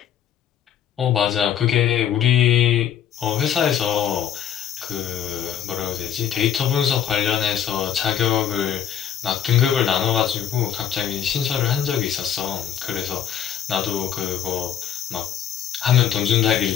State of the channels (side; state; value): right; quieter; 9.6 dB